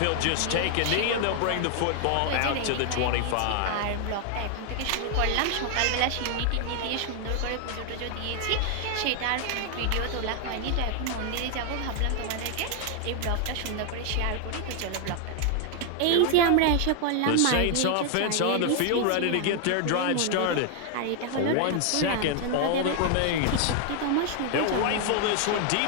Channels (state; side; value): different; both; correlation 0.00